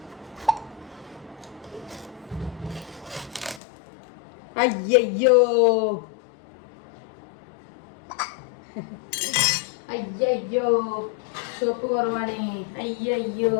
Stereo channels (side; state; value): right; drops out; at 3.6 s